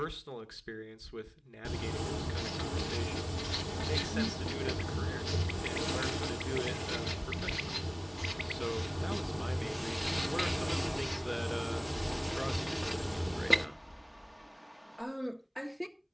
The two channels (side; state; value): both; identical; correlation 1.00